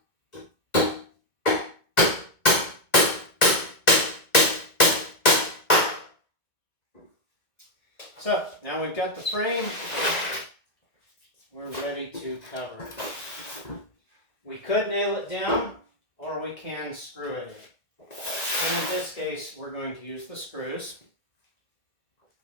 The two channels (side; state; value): right; late; 1.9 ms